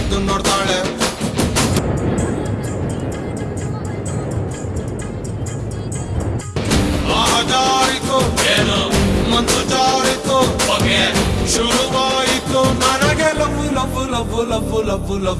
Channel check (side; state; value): both; identical; correlation 1.00